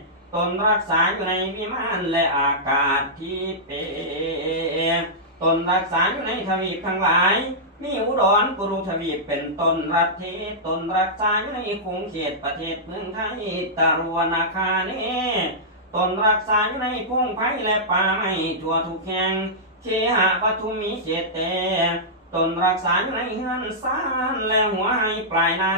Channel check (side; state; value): both; normal; correlation -0.13